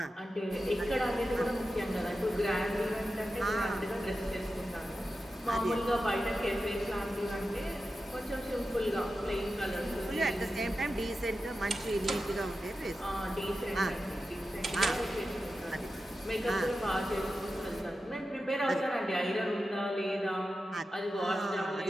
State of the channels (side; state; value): both; normal; correlation 0.92